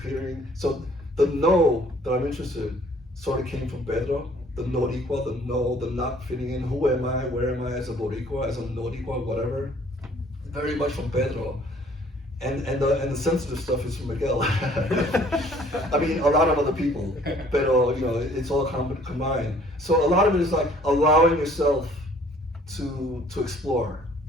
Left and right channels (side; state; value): both; normal; correlation 0.57